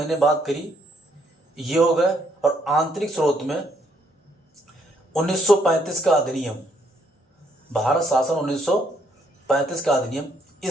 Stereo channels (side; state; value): both; normal; correlation 0.70